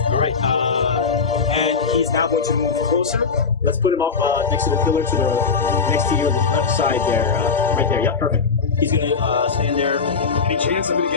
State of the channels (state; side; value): quieter; right; 5.2 dB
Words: right. And he's now going to move closer. Let's put him up next to the pillar next to your left side there. Right there. Yep, perfect. He's going to stand there. Any chance of